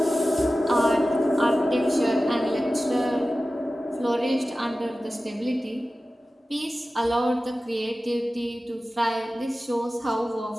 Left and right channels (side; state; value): both; normal; correlation 0.95